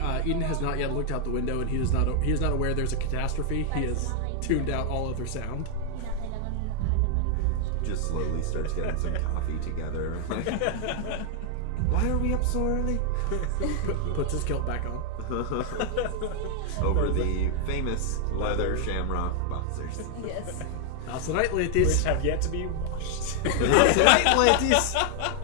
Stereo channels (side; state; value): both; different; correlation 0.00